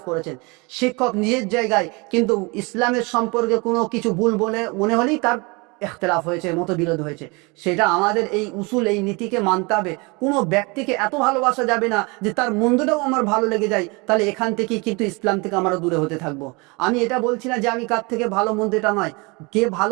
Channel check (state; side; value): quieter; left; 28.1 dB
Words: করেছেন। শিক্ষক নিজের জায়গায়, কিন্তু ইসলামের সম্পর্কে কোনো কিছু ভুল বলে মনে হলেই তার ইখতিলাফ হয়েছে, মতবিরোধ হয়েছে। সেটা আমাদের এই উসুল, এই নীতিকে মানতে হবে। কোনো ব্যক্তিকে এত ভালোবাসা যাবে না যে তার মন্দটাও আমার ভালো লেগে যায়, তাহলে এখান থেকে কিন্তু ইসলাম থেকে আমরা দূরে হতে থাকবো। আমি এটা বলছি না যে আমি কার থেকে ভালো মন্দ, এটা নয়। কে